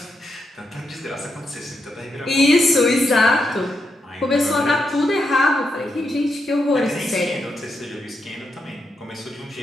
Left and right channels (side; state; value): both; normal; correlation 0.83